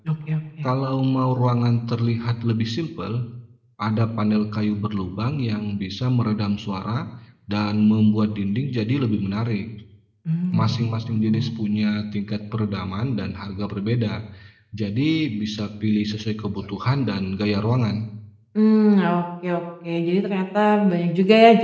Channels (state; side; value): identical; both; correlation 1.00